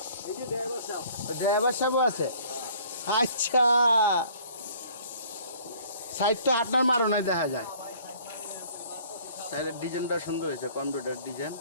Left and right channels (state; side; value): inverted; both; correlation -0.55